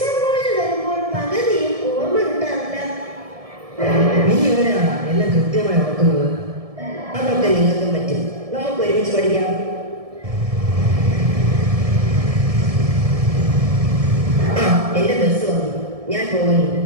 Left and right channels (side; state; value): left; late; 1.7 ms